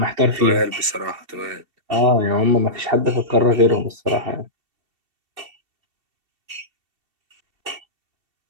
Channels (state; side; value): late; left; 2.7 ms